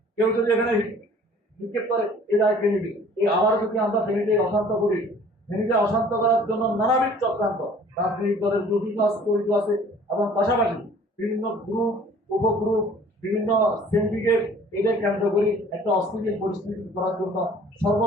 কেউ যদি এখানে নিক্ষেপ করে, এ দায় কে নিবে? এই আবার যদি আমরা ফেনীতে অশান্ত করি, ফেনীতে অশান্ত করার জন্য নানাবিধ চক্রান্ত রাজনৈতিক দলের জড়িত আছে এবং পাশাপাশি বিভিন্ন গ্রুপ, উপগ্রুপ, বিভিন্ন সিন্ডিকেট এদের কেন্দ্র করে একটা অস্থিতিশীল পরিস্থিতি করার জন্য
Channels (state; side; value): normal; both; correlation 0.52